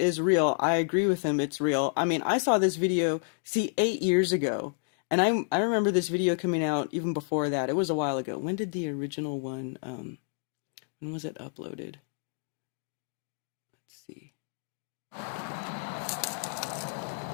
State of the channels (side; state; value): right; silent; digital silence